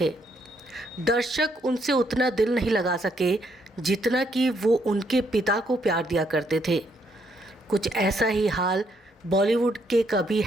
दर्शक उनसे उतना दिल नहीं लगा सके जितना कि वो उनके पिता को प्यार दिया करते थे। कुछ ऐसा ही हाल बॉलीवुड के कभी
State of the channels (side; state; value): both; normal; correlation 0.73